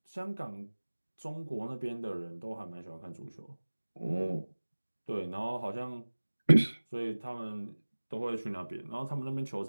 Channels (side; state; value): both; inverted; correlation -1.00